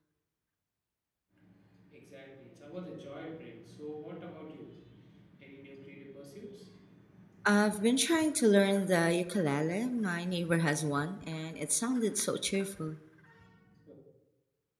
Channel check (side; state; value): both; identical; correlation 1.00